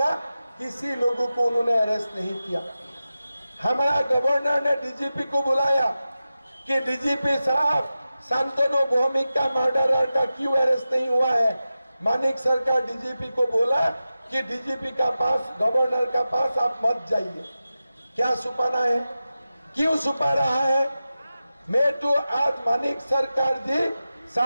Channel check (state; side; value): inverted; both; correlation -0.94